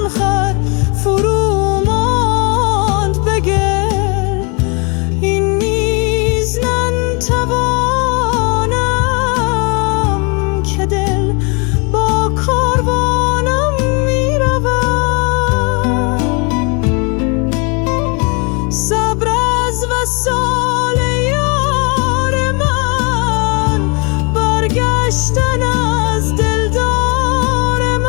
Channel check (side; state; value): right; quieter; 32.8 dB